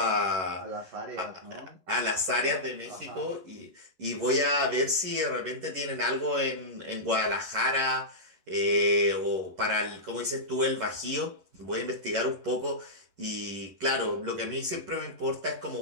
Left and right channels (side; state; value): left; late; 11 ms